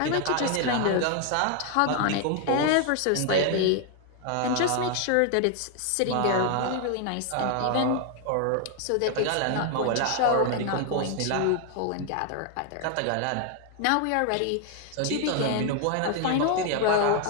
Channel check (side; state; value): both; different; correlation 0.00